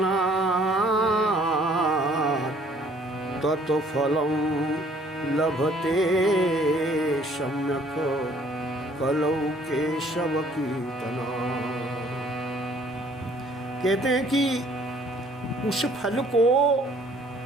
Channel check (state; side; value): normal; both; correlation 0.59